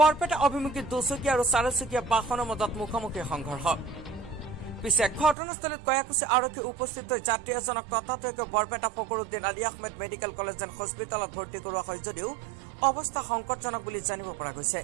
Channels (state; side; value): drops out; left; at 5.4 s